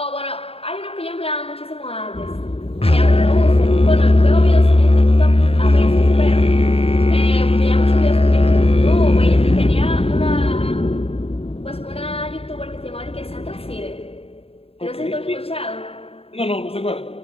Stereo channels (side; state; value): right; late; 0.28 ms